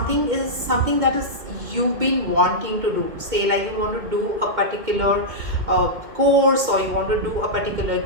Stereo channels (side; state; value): left; late; 2.2 ms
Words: that is you've been wanting to do. Say like you want to do a particular course, or you want to do a particular